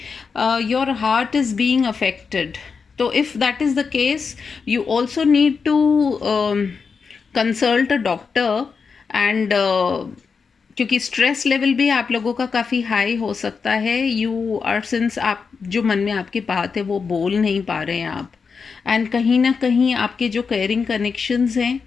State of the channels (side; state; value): right; quieter; 5.4 dB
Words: your heart is being affected. So if that is the case, you also need to consult a doctor. And क्योंकि स्ट्रेस लेवल भी आप लोगों का काफ़ी हाई हो सकता है। यू आर, सिंस आप जो मन में आपकी बात है वो बोल नहीं पा रहे हैं आप, एंड कहीं ना कहीं आपके जो केयरिंग कनेक्शंस हैं